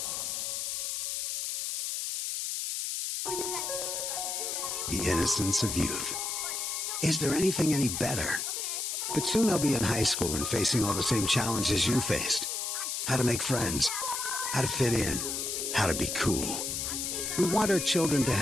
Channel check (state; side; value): noise; left; hiss, 2 dB below the sound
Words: The innocence of youth. Is there anything any better? But soon they'll be in high school and facing all the same challenges you faced. How to make friends, how to fit in, how to be cool. We want our children to